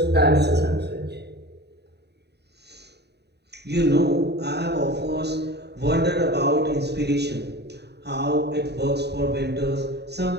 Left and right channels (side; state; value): left; late; 0.48 ms